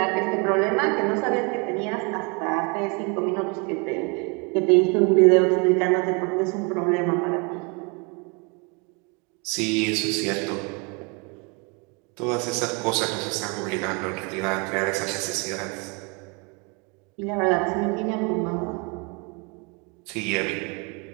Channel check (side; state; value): left; quieter; 31.6 dB